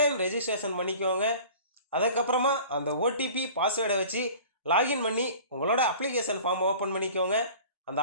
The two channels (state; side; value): inverted; both; correlation -0.43